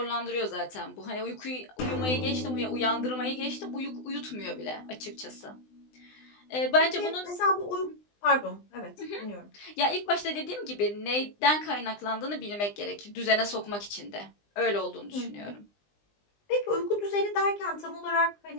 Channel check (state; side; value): late; right; 20 ms